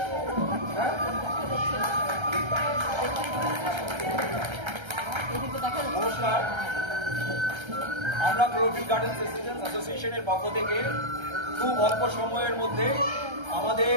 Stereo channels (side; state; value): left; late; 1.3 ms